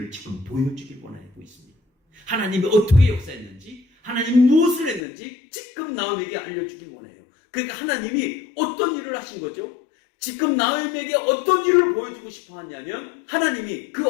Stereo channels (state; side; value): drops out; right; at 5.0 s